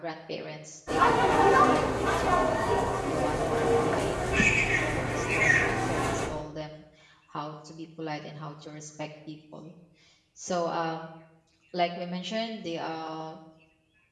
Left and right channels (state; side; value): identical; both; correlation 1.00